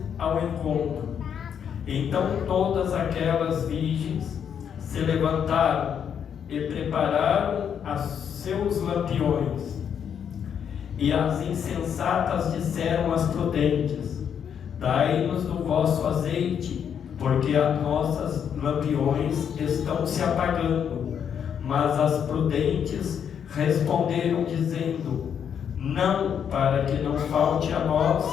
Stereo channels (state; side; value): quieter; right; 8.1 dB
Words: ao encontro. Então todas aquelas virgens se levantaram e prepararam os seus lampiões. E as insensatas disseram às prudentes: dai-nos do vosso azeite, porque as nossas lampiões estão se apagando. Mas as prudentes responderam dizendo: não, para que não falte a